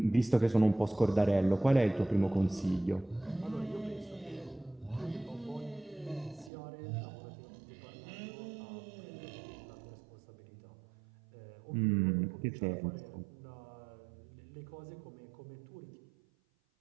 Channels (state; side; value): drops out; left; at 6.5 s